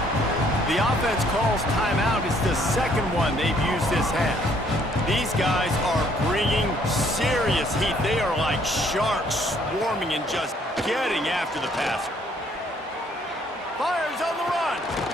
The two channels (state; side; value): normal; both; correlation 0.64